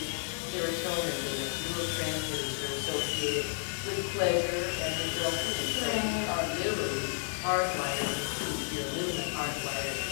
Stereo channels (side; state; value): right; silent; digital silence